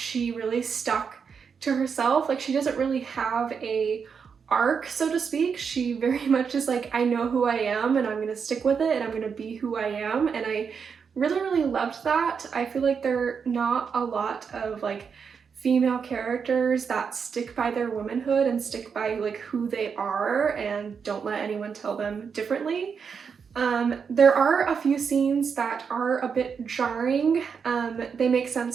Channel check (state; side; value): quieter; left; 6.3 dB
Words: really stuck to herself. Like, she doesn't really have a arc, so to speak. She very much is like, I know who I am and I'm gonna stick with it and I'm gonna be who I am. And I really, really loved that. I feel like there are not a lot of like female characters that stick by their womanhood and stick by like who they are and don't let anyone tell them differently. There are a few scenes that are a bit jarring. They make